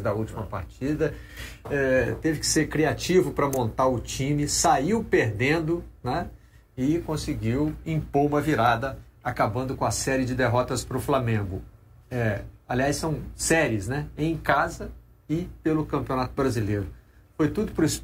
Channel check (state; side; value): identical; both; correlation 1.00